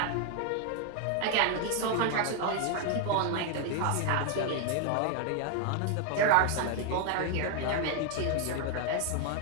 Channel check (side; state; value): both; different; correlation 0.00